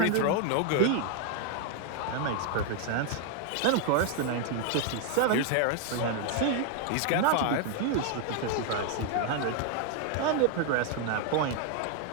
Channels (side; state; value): both; different; correlation 0.00